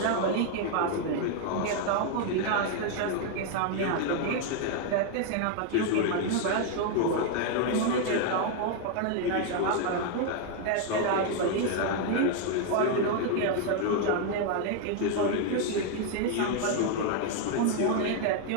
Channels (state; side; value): different; both; correlation 0.00